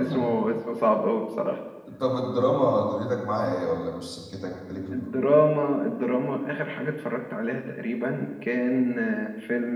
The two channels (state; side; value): identical; both; correlation 1.00